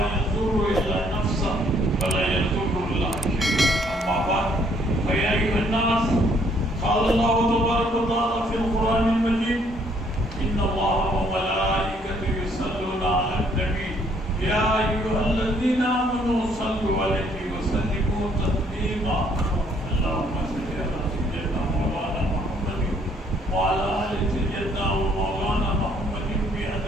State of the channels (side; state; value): both; normal; correlation 0.66